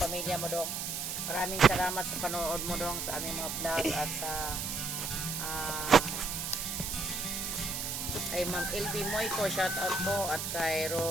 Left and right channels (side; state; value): right; noise; hiss, 3 dB below the sound